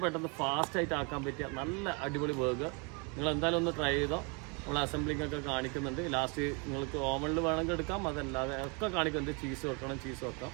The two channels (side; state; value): left; quieter; 33.2 dB